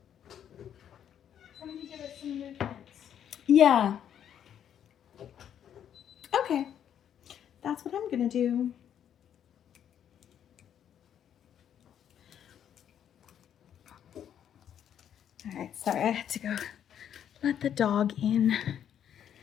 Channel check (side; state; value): right; quieter; 9.5 dB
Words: Somebody give us some movement. Yeah. Okay. That's what I'm gonna do. All right, sorry, I had to go let the dog in.